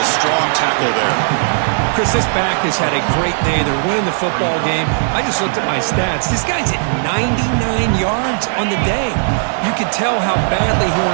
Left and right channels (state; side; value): silent; left; 59 dB below the other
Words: a strong tackle there. Chris, this back has had a great day. They're winning the football game. I just looked at my stats. This guy's at 99 yards on the day. You can tell how badly he